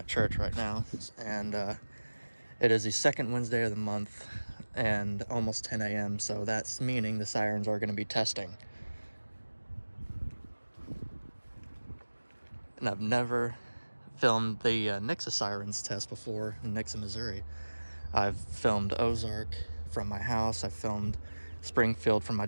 church right now, and it is the second Wednesday of the month and almost 10 a.m., so that's meaning the sirens are going to be testing. And I've never filmed the Nixa sirens test before in Nixa, Missouri. I've filmed Ozark from my house, I filmed Springfield from my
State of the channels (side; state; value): both; inverted; correlation -1.00